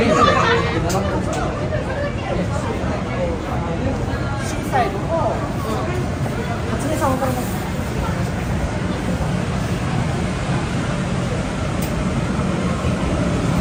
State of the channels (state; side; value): identical; both; correlation 1.00